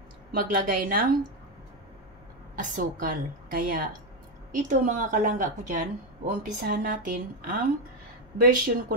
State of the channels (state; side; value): normal; both; correlation 0.07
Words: maglagay ng asukal. Kaya, ito mga kalangga ko dyan, uumpisahan natin ang version